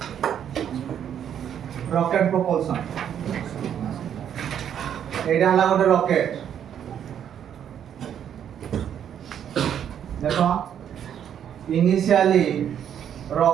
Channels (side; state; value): left; quieter; 9.2 dB